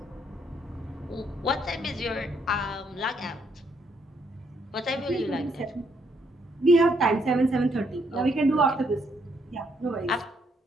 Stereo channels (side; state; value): both; normal; correlation 0.72